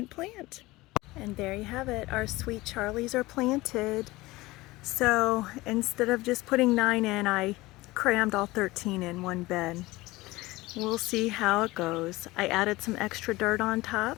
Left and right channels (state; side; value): quieter; right; 20.0 dB